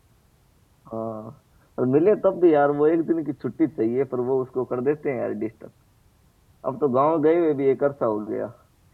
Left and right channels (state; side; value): identical; both; correlation 1.00